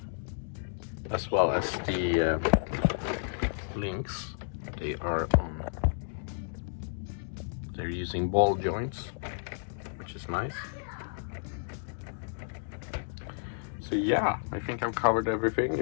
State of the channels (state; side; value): silent; right; digital silence